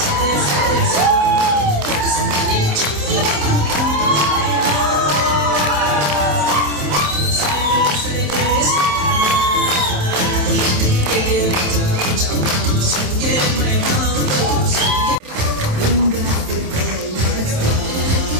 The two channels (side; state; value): left; late; 27 ms